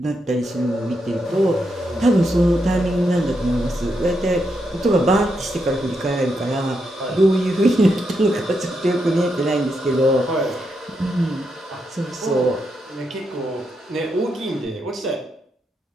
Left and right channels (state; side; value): normal; both; correlation 0.82